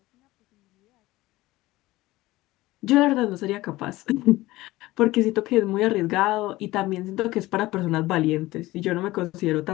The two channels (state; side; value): quieter; right; 18.3 dB